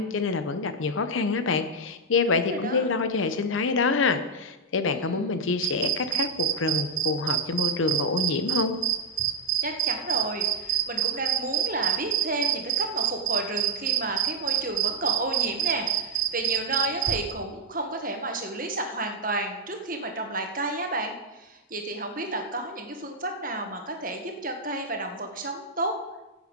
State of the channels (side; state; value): both; normal; correlation 0.02